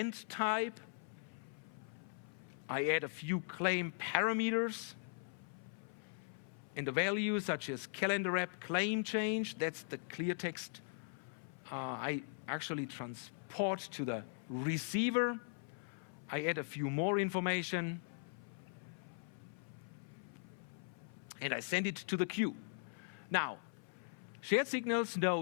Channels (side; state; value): right; silent; 51 dB below the other